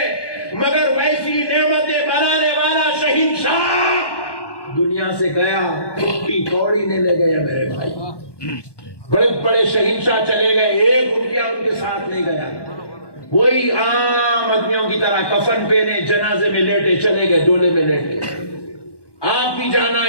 مگر ویسی نعمتیں بنانے والا شہنشاہ دنیا سے گیا ٹوٹی کوڑی نہیں لے گیا میرے بھائی بڑے بڑے شہنشاہ چلے گئے ایک روپیہ ان کے ساتھ نہیں گیا وہی عام آدمیوں کی طرح کفن پہنے جنازے میں لیٹے چلے گئے ڈولے میں لیٹے آپ بھی جانا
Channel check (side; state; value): right; late; 1.2 ms